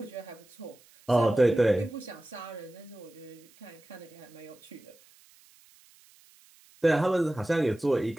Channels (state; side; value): noise; right; hiss, 28 dB below the sound